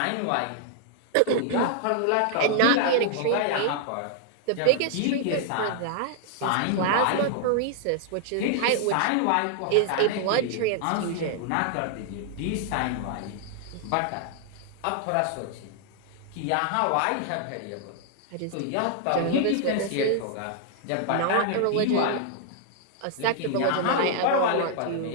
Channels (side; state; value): both; different; correlation -0.01